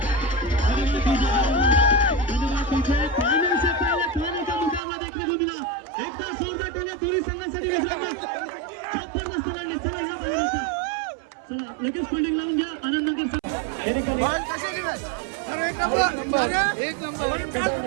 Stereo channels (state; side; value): drops out; left; at 4.8 s